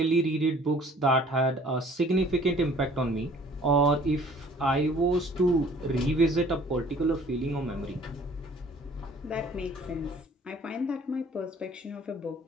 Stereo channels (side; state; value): both; normal; correlation 0.53